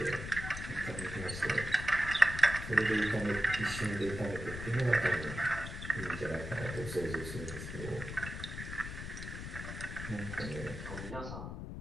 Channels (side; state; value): left; noise; rumble, 8 dB below the sound